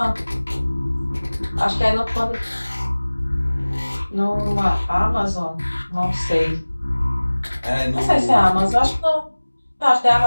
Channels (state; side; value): inverted; both; correlation -1.00